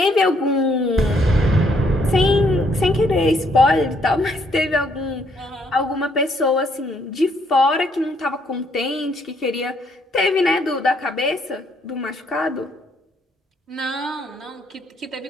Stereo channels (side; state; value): both; normal; correlation 0.69